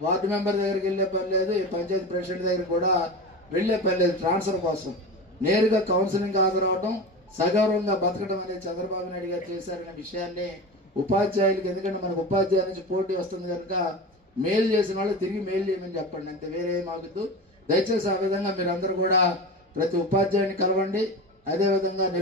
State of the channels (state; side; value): normal; both; correlation 0.28